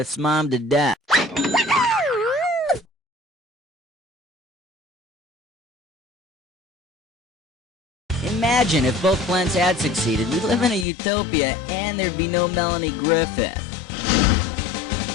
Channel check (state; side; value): drops out; right; at 10.9 s